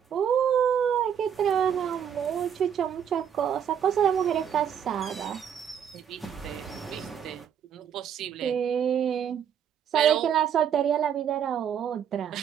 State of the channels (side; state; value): left; quieter; 8.6 dB